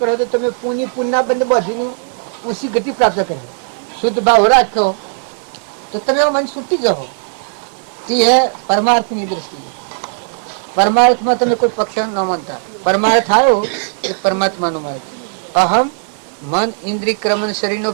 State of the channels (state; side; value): silent; left; 59 dB below the other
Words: કરો તો તમે પુણ્યના બંને બધીને ઊંચી ગતિ પ્રાપ્ત કરે. શુદ્ધ ભાવ રાખો તો તમે મન છૂટી જાઓ. તે હે પરમાર્થની દ્રષ્ટિએ. પરમાર્થમાં તમે કોઈ પક્ષ ન માનતા. પરમાર્થ આવ્યો એ પરમાત્માનો માર્ગ. અહમ મન ઇન્દ્રિય ક્રમણ શરીરનો